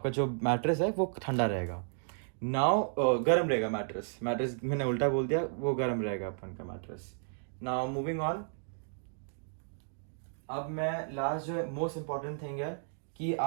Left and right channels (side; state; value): left; silent; digital silence